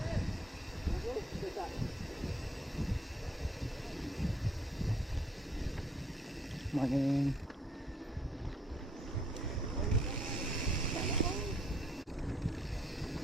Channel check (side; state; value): both; normal; correlation 0.66